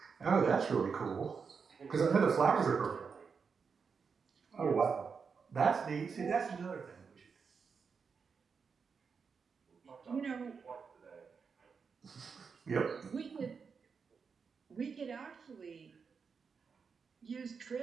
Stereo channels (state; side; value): quieter; left; 5.7 dB